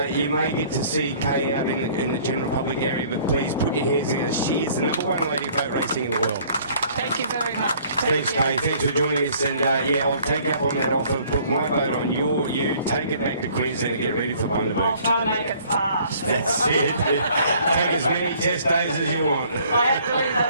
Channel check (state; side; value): inverted; both; correlation -0.56